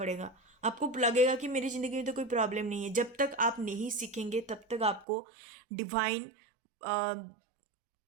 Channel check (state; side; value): drops out; left; at 5.1 s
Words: आपको लगेगा कि मेरी ज़िंदगी में तो कोई प्रॉब्लम नहीं है। जब तक आप नहीं सीखेंगे तब तक आपको डिवाइन